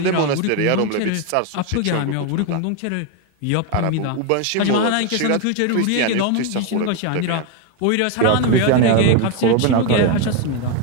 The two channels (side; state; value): both; different; correlation 0.02